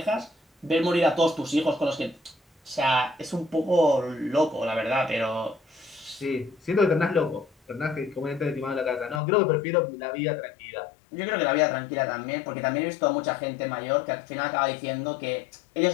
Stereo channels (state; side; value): drops out; right; at 9.2 s